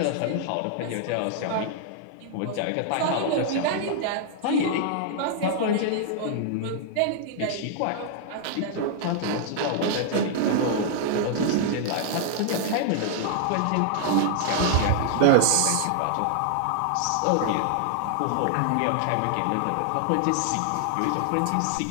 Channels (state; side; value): different; both; correlation 0.00